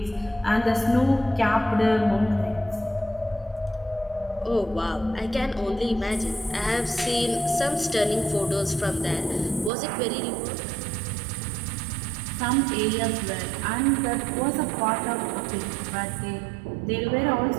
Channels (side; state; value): left; drops out; at 9.7 s